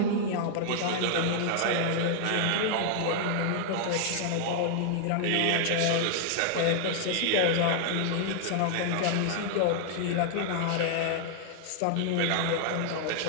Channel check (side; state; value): both; different; correlation 0.00